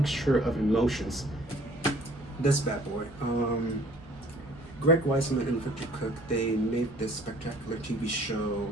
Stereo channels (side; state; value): both; normal; correlation 0.54